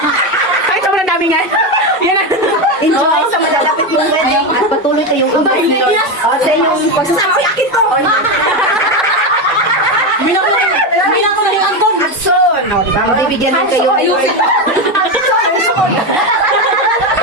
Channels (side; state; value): both; normal; correlation 0.13